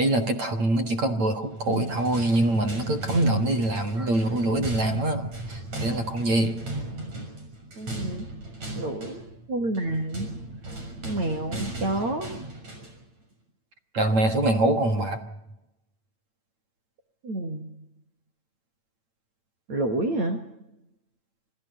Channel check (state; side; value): late; left; 8.9 ms